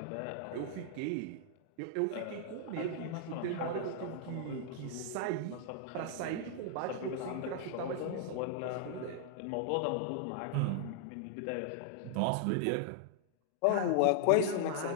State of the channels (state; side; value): different; both; correlation 0.00